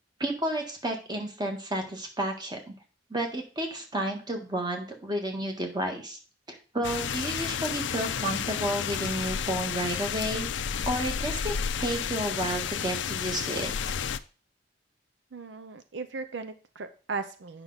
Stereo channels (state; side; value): normal; both; correlation 0.39